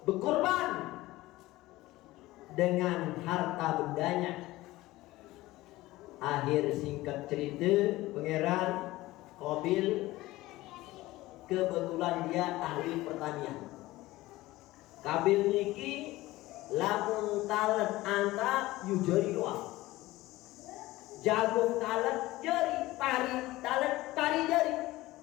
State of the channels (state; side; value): quieter; right; 18.1 dB